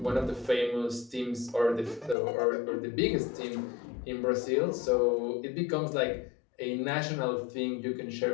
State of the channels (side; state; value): right; drops out; at 2.1 s